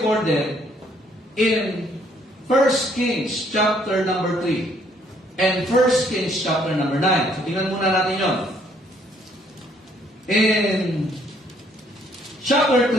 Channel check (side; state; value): both; normal; correlation 0.66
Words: in 1 Kings chapter number 3 and 1 Kings chapter number 9. So, tingnan muna natin yon. In chapter